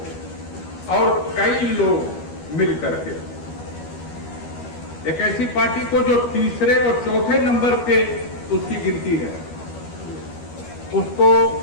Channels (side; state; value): right; late; 12 ms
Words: और कई लोग मिल करके एक ऐसी पार्टी को जो तीसरे और चौथे नंबर पे उसकी गिनती है, उसको